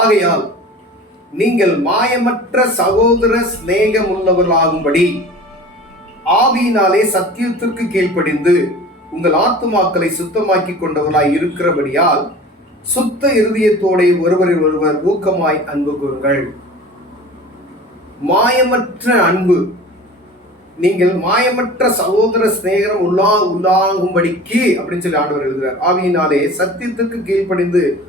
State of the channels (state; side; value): normal; both; correlation 0.40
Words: ஆகையால் நீங்கள் மாயமற்ற சகோதர சிநேகம் உள்ளவர்களாகும்படி ஆவியினாலே சத்தியத்திற்கு கீழ்ப்படிந்து உங்கள் ஆத்துமாக்களை சுத்தமாக்கி கொண்டவர்களாய் இருக்கிறபடியால் சுத்த இருதயத்தோட ஒருவரில் ஒருவர் ஊக்கமாய் அன்பு கூறுங்கள். மாயமற்ற அன்பு, நீங்கள் மாயமற்ற சகோதர சிநேகம் உள்ளாகும்படிக்கு அப்படின்னு சொல்லி ஆண்டவர் எழுதுகிறார். ஆவியினாலே சத்தியத்துக்கு கீழ்ப்படிந்து